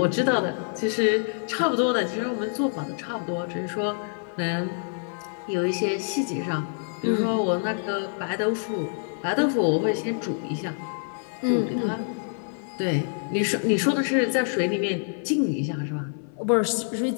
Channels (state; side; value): silent; right; 57 dB below the other